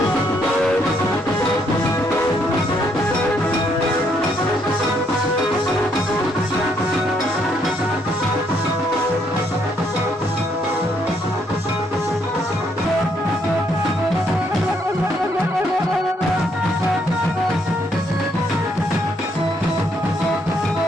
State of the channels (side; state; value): both; normal; correlation 0.72